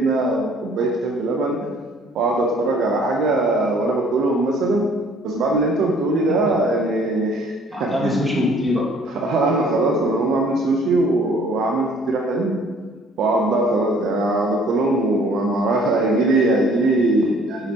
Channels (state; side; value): normal; both; correlation 0.56